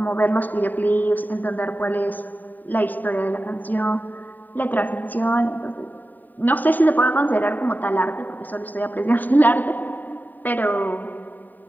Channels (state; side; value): late; right; 0.087 ms